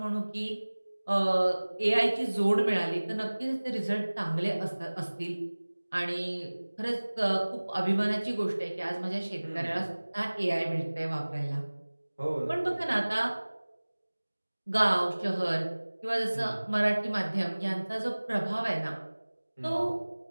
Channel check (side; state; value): both; inverted; correlation -1.00